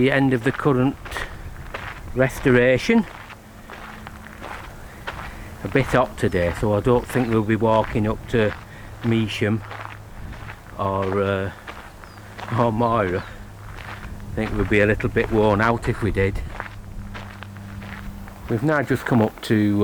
end of the current restoration. A bit hot today, so I don't think we'll be walking up to Measham or Moira. I think we'll be a little bit worn out if we did. We've now just come up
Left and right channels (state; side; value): identical; both; correlation 1.00